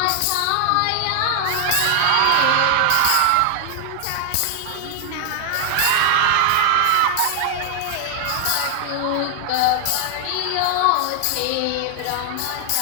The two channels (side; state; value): both; different; correlation 0.00